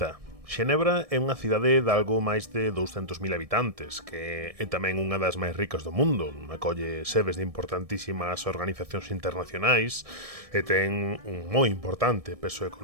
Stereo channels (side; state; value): left; late; 1.6 ms